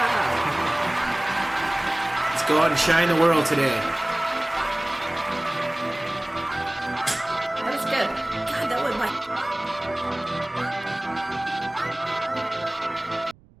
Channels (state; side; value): noise; right; rumble, 27 dB below the sound